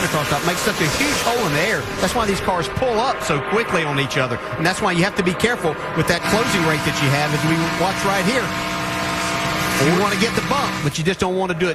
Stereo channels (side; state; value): both; identical; correlation 1.00